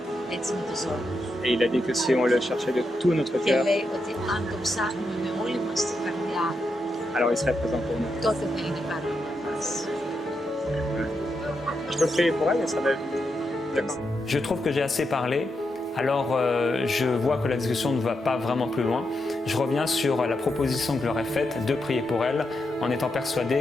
έτσι με τους όρους. Et il a dit que si on le cherchait de tout notre Και cœur, λέει ότι αν το ψάχνουμε με όλη μας την καρδιά, alors il serait présent pour nous. τότε θα είναι παρόν για μας. Je peux prier pour elle et ça va être... D'accord. Je trouve que j'ai assez parlé, alors je vois que la discussion ne va pas vraiment plus loin. Je reviens sur la proposition que je leur ai faite de prier pour elle, en étant persuadé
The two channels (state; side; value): normal; both; correlation 0.84